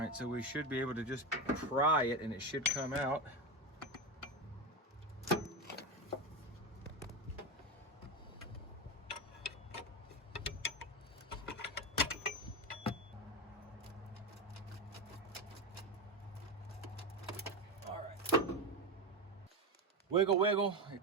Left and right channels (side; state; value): both; normal; correlation 0.15